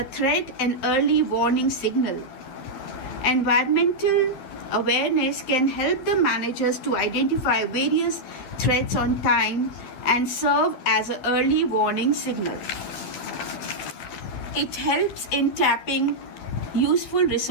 threat and early warning signal. Environmental awareness can help the managers to identify various threats on time and serve as an early warning signal. It helps in tapping useful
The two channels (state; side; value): late; right; 11 ms